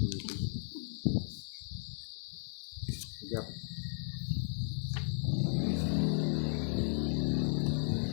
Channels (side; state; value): right; silent; digital silence